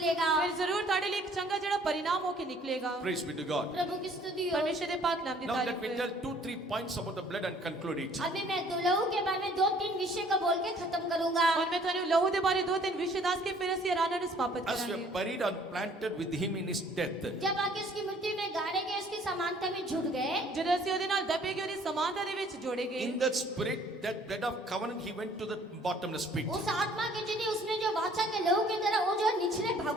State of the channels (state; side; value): normal; both; correlation 0.57